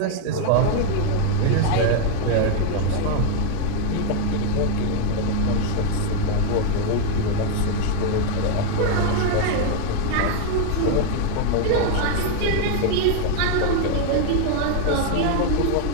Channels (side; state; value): both; different; correlation 0.00